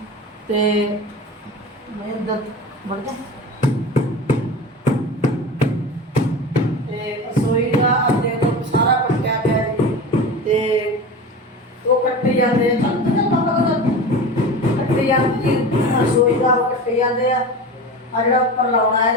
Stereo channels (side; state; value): both; normal; correlation 0.31